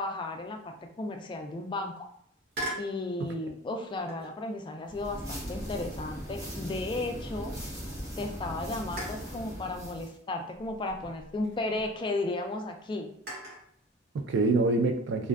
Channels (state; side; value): normal; both; correlation 0.40